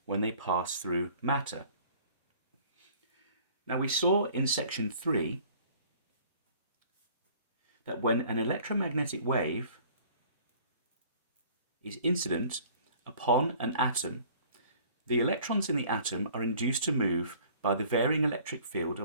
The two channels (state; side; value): inverted; both; correlation -0.52